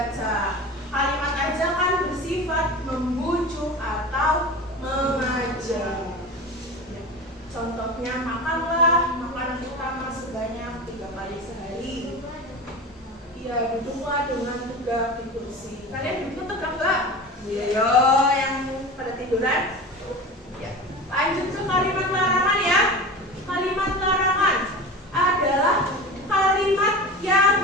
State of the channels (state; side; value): normal; both; correlation 0.31